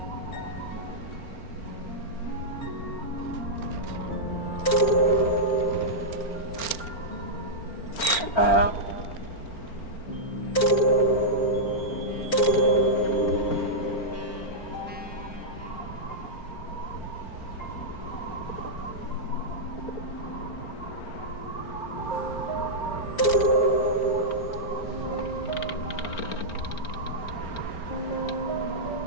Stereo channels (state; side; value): late; right; 4.4 ms